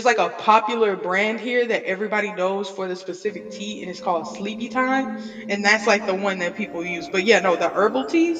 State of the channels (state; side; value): identical; both; correlation 1.00